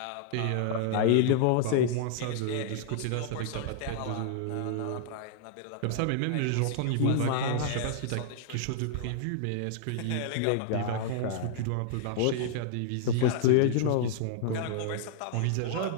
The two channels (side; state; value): both; different; correlation -0.01